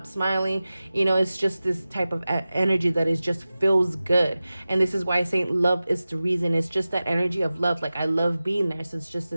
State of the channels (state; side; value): inverted; both; correlation -0.96